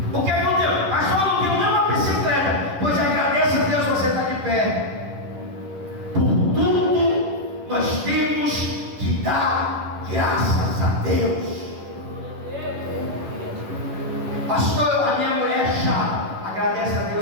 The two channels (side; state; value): left; late; 10 ms